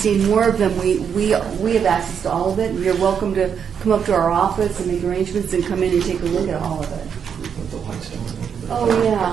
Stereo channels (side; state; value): left; quieter; 7.4 dB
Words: more of them, we have access to all of it. You're welcome to come up to our office and make arrangements and come in and take a look at all of it. Put the lights down a Oh, little bit.